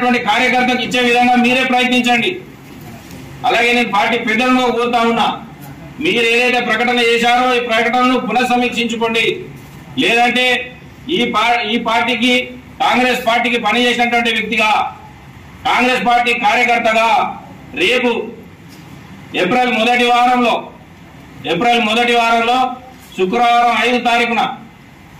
కార్యకర్తకు ఇచ్చే విధంగా మీరే ప్రయత్నించండి. అలాగే నేను పార్టీ పెద్దలను కోరుతా ఉన్నా, మీరు ఏదైతే ప్రకటన చేశారో ఈ ప్రకటనను పునఃసమీక్షించుకోండి. లేదంటే ఈ పార్టీకి, కాంగ్రెస్ పార్టీకి పనిచేసినటువంటి వ్యక్తిగా, కాంగ్రెస్ పార్టీ కార్యకర్తగా రేపు ఏప్రిల్ మొదటి వారంలో శుక్రవారం 5 తారీఖున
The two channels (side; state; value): both; identical; correlation 1.00